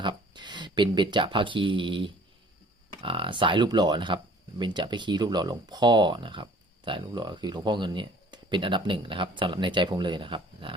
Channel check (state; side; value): normal; both; correlation 0.52